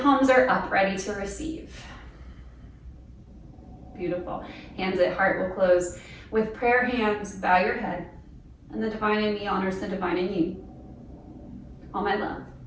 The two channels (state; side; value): identical; both; correlation 1.00